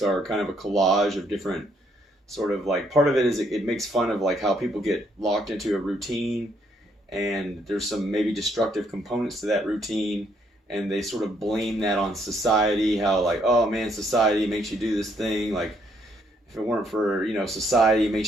are kind of a collage of different sort of like, part of it is it makes fun of like how people get locked into a routine, and there's some maybe destructive components to that routine, and they sort of blame that on society, how like, oh man, society makes you do this thing, like if it weren't for, you know, society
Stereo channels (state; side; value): normal; both; correlation 0.71